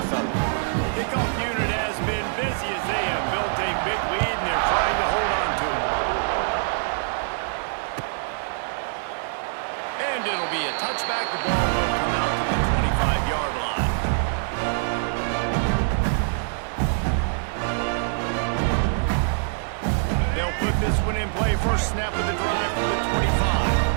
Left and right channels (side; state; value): left; silent; 62 dB below the other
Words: fella. Kickoff unit has been busy as they have built a big lead and they're trying to hold on to it. And it'll be a touchback. The ball will come out to the 25-yard line. They'll put this one in play. First snap of the drive from the 25.